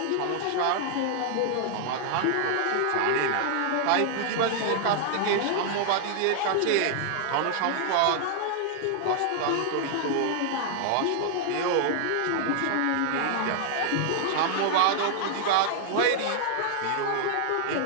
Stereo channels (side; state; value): both; different; correlation 0.00